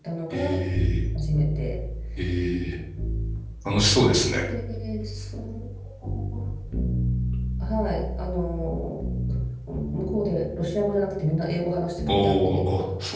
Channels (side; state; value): both; identical; correlation 1.00